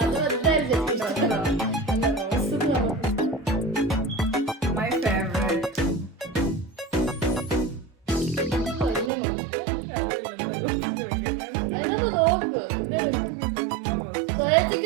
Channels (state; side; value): drops out; left; at 9.1 s